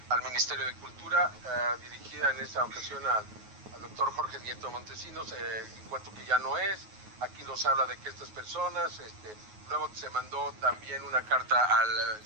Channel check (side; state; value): left; late; 9.4 ms